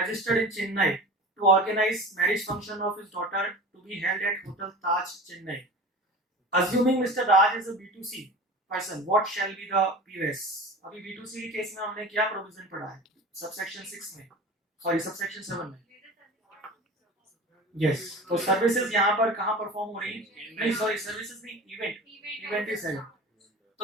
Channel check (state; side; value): normal; both; correlation 0.35